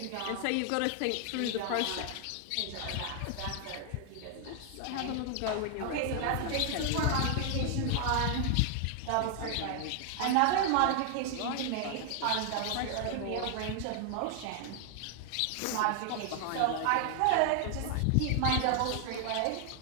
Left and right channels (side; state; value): both; different; correlation 0.00